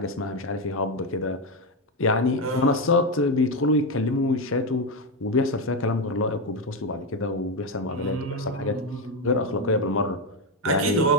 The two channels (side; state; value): both; normal; correlation 0.09